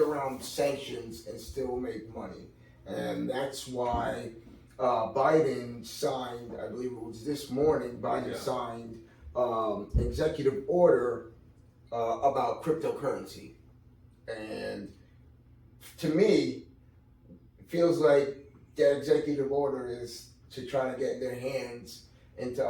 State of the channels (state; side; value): identical; both; correlation 1.00